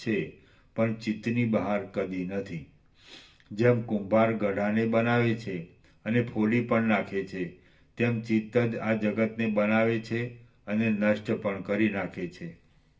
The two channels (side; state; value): both; identical; correlation 1.00